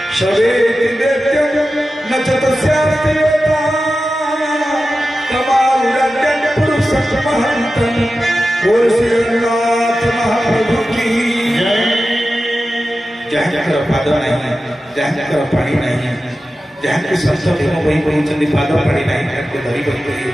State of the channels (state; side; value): normal; both; correlation 0.93